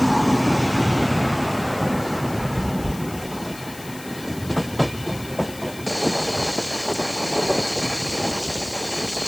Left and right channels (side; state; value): left; noise; hiss, 16 dB below the sound